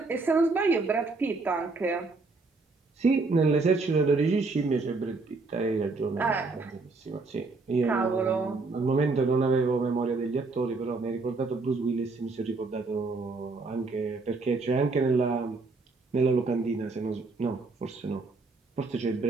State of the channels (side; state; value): left; quieter; 3.8 dB